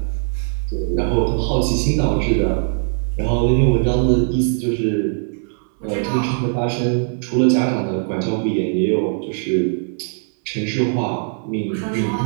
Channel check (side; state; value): left; silent; 66 dB below the other